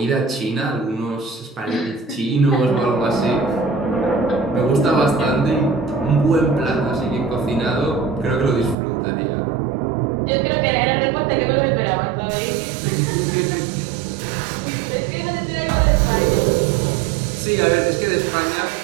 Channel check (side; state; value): left; drops out; at 8.8 s